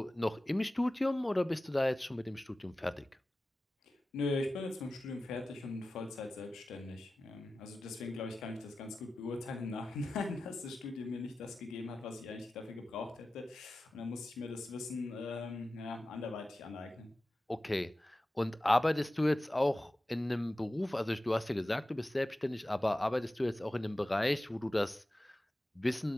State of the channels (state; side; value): normal; both; correlation 0.95